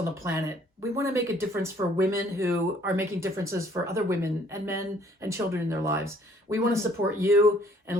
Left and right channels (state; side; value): normal; both; correlation 0.60